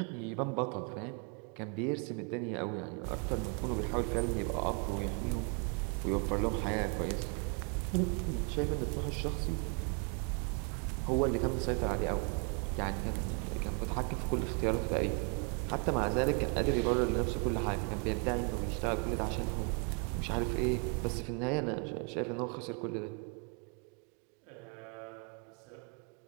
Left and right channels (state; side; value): quieter; left; 37.4 dB